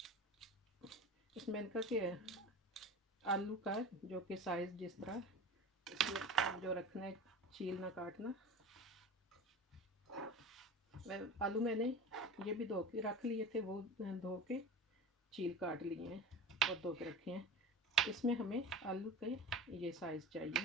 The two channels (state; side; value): normal; both; correlation 0.32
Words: इसमें इनका कि आलू का जो कि साइज़ जिस तरह इसमें जो रखना है, छीलना काटना। आलू मैंने ये भी धो के रख लिए थे, वो धो के छील काट लिए हैं और धो के रखे हैं। इसमें हमें आलू के ये साइज़